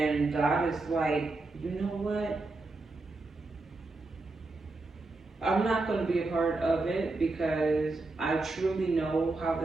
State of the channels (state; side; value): quieter; left; 3.3 dB